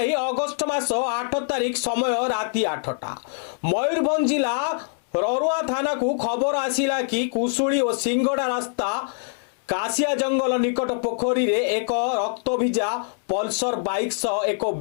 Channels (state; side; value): silent; right; digital silence